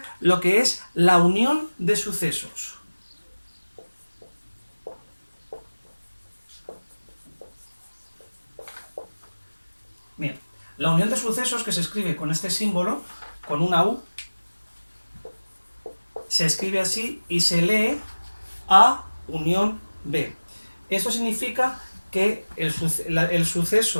lo que es la unión de sucesos. Bien, la unión de sucesos, que se escribe con este símbolo, con una U, se escribe así y se lee A unión B. Esto significa que el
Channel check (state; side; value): inverted; both; correlation -1.00